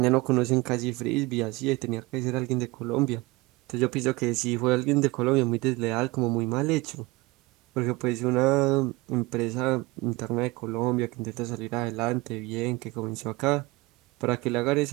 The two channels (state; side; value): quieter; left; 22.1 dB